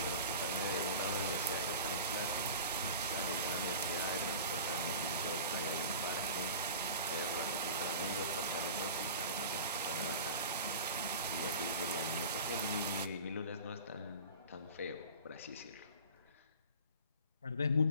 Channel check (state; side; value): inverted; both; correlation -0.37